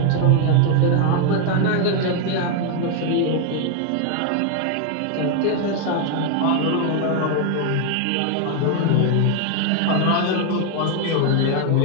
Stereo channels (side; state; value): both; different; correlation 0.00